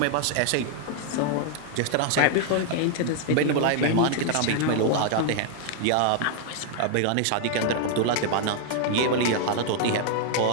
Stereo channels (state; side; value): different; both; correlation 0.00